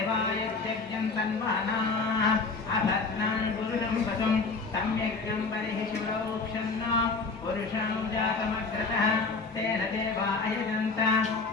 तन्वानाः अभद्रं पुरुषं वसुं तं यज्ञं बलिः शिवरोक्षन्न पुरुषं जातमग्रतः तेन देवा अयजन्त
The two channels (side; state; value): right; quieter; 4.1 dB